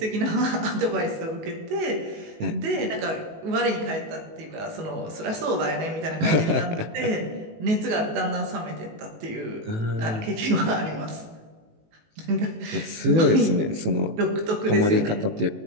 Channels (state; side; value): late; left; 18 ms